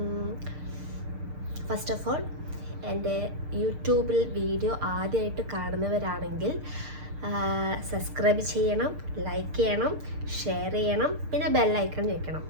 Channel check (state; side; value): late; left; 6.6 ms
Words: ഫസ്റ്റ് ഓഫ് ഓൾ, എൻ്റെ യൂട്യൂബിൽ വീഡിയോ ആദ്യമായിട്ട് കാണുന്നവരാണെങ്കിൽ സബ്സ്ക്രൈബ് ചെയ്യണം, ലൈക്ക് ചെയ്യണം, ഷെയർ ചെയ്യണം, പിന്നെ ബെല്ലൈക്കൺ ഞെക്കണം.